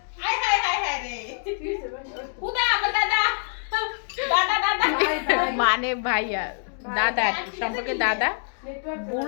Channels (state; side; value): silent; right; digital silence